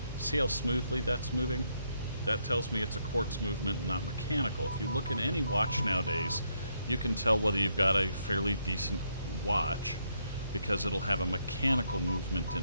See how smoothly that's moving? That tells me it's a quartz movement, not mechanical. If you look at any watch nowadays, you can tell whether you've got a fairly decent watch because it'll have a mechanical movement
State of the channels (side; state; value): both; inverted; correlation -0.76